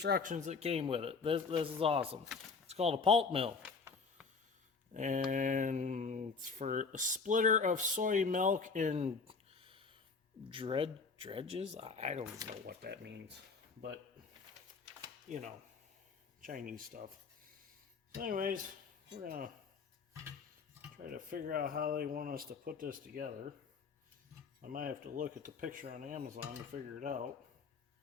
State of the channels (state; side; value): quieter; right; 4.8 dB